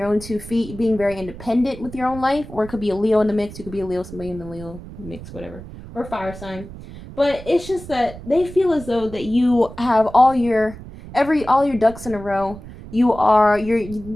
own 2 feet, being very independent with your own life. Or it could be a Leo in the mix. You could be a Leo, somebody in the Leo mix, whatever, or fire sign. But it's just that they feel as though that you have all your ducks in a row.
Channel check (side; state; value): right; noise; rumble, 14 dB below the sound